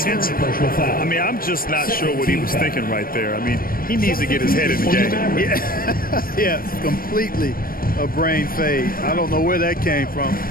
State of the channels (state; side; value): late; right; 0.42 ms